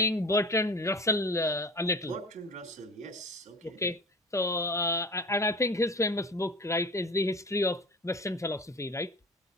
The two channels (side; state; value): both; normal; correlation 0.37